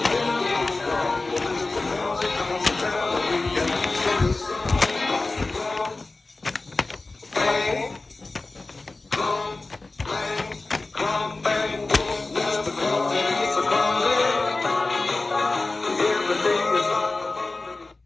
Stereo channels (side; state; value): right; quieter; 3.3 dB